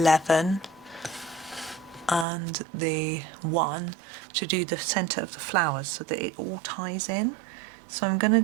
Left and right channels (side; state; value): left; drops out; at 2.2 s